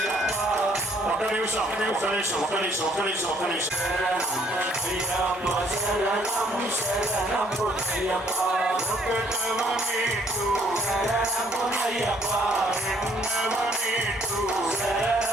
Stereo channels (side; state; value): both; normal; correlation 0.64